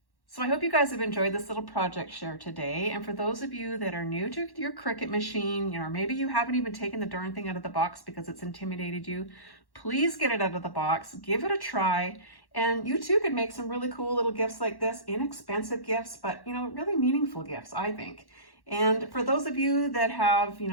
So I hope you guys have enjoyed this little project share today. And for those of you that are new to your Cricut machine, you know, maybe you haven't even taken the darn thing out of the box because it's intimidated you, please get it out of the box, give it a try. And you too could make some really cool little gifts like this, inexpensive gifts, but, you know, really meaningful gifts, I think. And for those of you that have, you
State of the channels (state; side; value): late; right; 1.1 ms